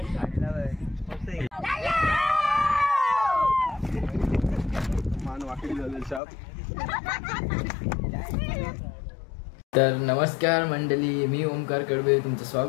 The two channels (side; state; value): right; drops out; at 6.2 s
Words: तर नमस्कार मंडळी, मी ओमकार कडवे तुमचं